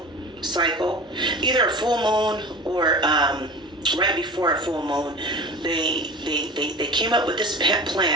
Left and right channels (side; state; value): both; normal; correlation 0.34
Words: cycle. Either a full moon or right before a full moon. They came up with this